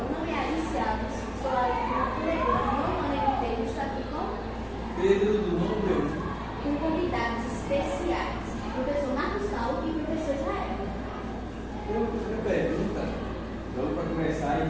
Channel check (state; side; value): identical; both; correlation 1.00